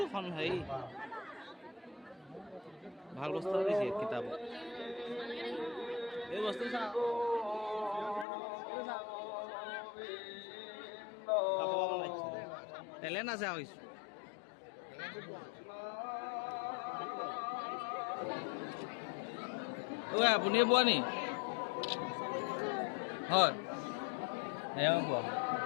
কম হেৰি ভাল বস্তু দিছে কিতাপ এই বস্তু টেলেণ্ট আছে আৰু কিছু আপুনি বোৱা নি হয় এয়া বোৱা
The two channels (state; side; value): drops out; right; at 8.2 s